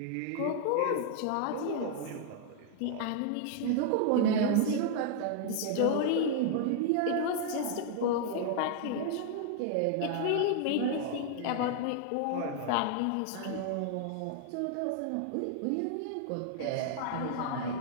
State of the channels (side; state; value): both; different; correlation 0.00